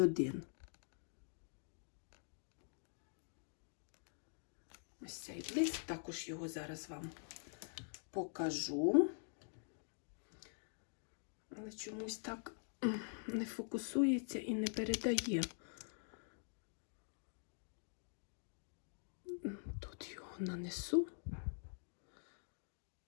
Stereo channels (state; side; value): silent; right; digital silence